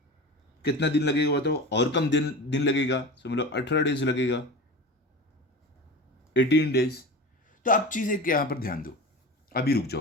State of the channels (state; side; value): normal; both; correlation 0.31